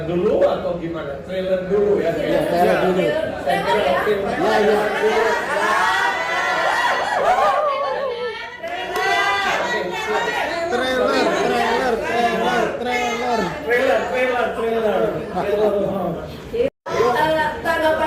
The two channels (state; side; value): identical; both; correlation 1.00